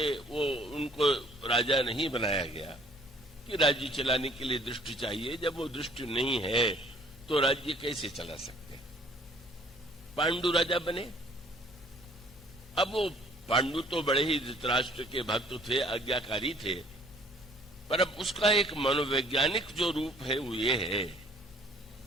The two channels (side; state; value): both; normal; correlation 0.58